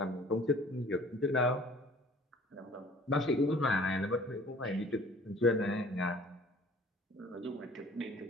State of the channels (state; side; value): normal; both; correlation 0.51